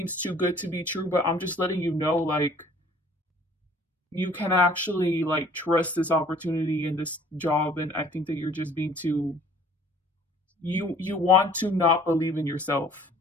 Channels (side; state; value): both; normal; correlation 0.54